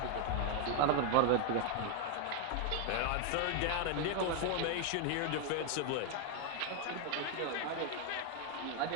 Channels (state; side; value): different; both; correlation 0.01